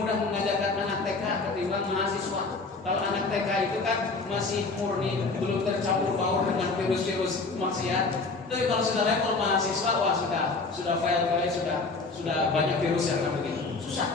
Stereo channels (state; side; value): quieter; right; 3.8 dB